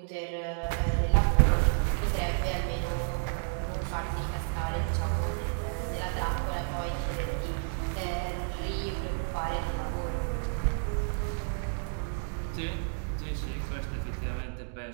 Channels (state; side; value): silent; left; 57 dB below the other